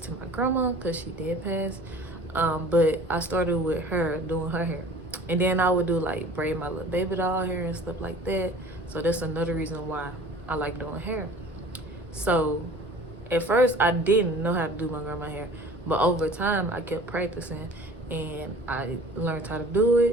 my grandma because she did pass. But I started with her doing her hair. And then I would do like braid my little baby doll hair and stuff like that. So that's another reason why I like doing hair. So at first I didn't know how to do my grandma hair, but over time I kept practicing and I learned how to do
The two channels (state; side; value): normal; both; correlation 0.46